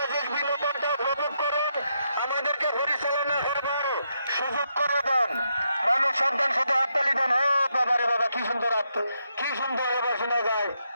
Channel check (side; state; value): both; inverted; correlation -0.80